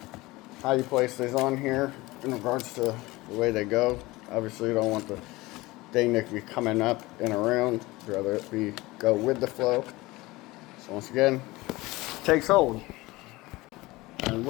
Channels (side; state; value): right; quieter; 20.6 dB